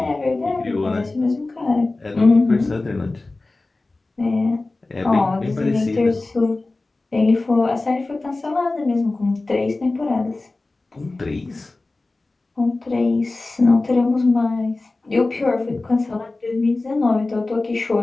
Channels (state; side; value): quieter; right; 3.2 dB